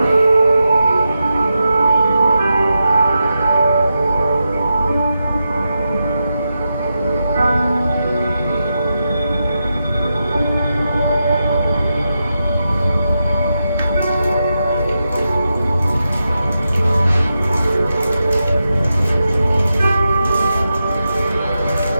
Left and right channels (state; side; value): inverted; both; correlation -0.88